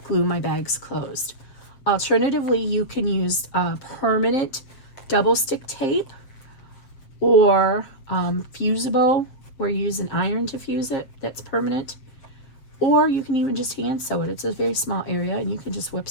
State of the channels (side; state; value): right; late; 7.5 ms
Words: glue my bags closed. Alternatively, you can use permanent double stick tape, or fusible, where you use an iron to fuse it. That's permanent. Or you can even just hand sew it. It's a very small area, and you can just whip